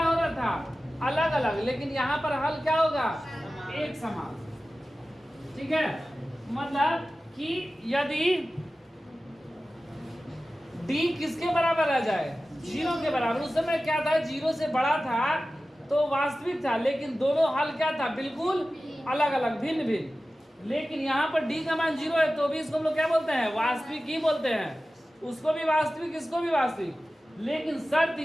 रहा था अलग अलग, लेकिन यहाँ पर हल क्या होगा एक समान, ठीक है। मतलब कि यदि d किसके बराबर आ जाए 0 के बराबर, उस समय क्या था 0 से बड़ा था तो वास्तविक था, लेकिन दोनों हल क्या था बिल्कुल अलग अलग भिन्न भिन्न। लेकिन यहाँ पर d का मान 0 है तो भी इसको हम लोग क्या बोलते हैं वास्तविक ही बोलते हैं, उसको भी वास्तविक इसको भी वास्तविक। लेकिन शर्त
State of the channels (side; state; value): both; normal; correlation 0.95